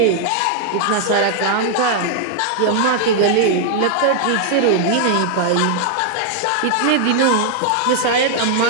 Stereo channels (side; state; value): both; different; correlation 0.00